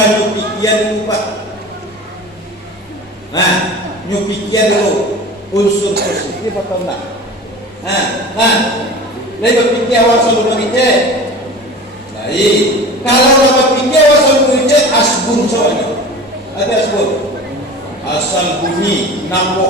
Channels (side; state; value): both; normal; correlation 0.36